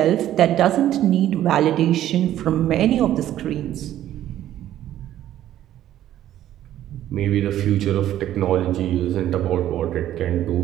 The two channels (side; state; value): left; quieter; 12.4 dB